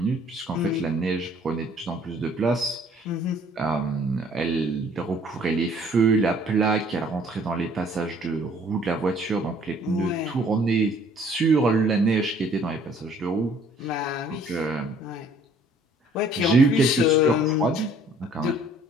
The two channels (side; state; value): both; normal; correlation 0.57